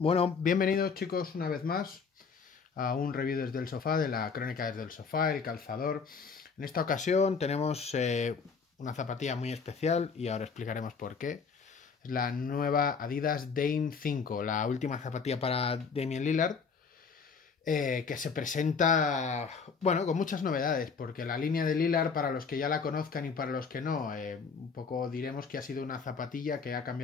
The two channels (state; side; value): quieter; right; 5.5 dB